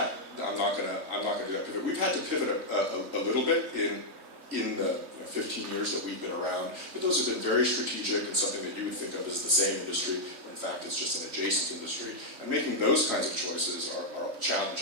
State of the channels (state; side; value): late; left; 3.1 ms